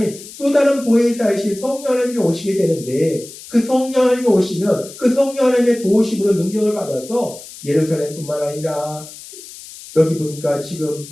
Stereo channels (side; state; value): left; noise; hiss, 16 dB below the sound